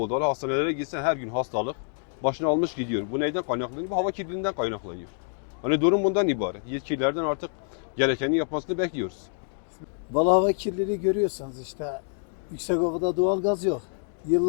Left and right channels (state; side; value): silent; right; 59 dB below the other